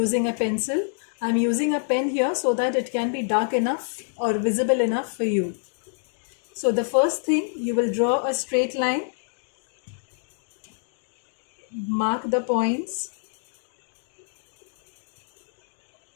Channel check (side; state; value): right; silent; digital silence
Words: a pencil. I am using a pen here so that it can be dark enough or visible enough for you. So the first thing, you will draw a straight line, mark the points,